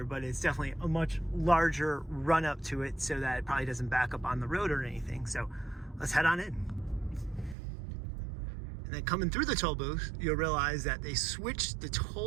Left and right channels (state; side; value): drops out; left; at 7.6 s